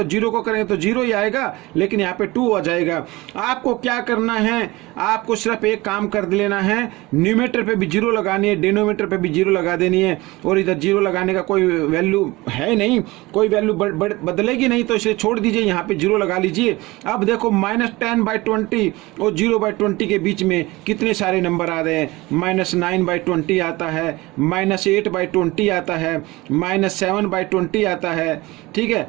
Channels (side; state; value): left; quieter; 21.1 dB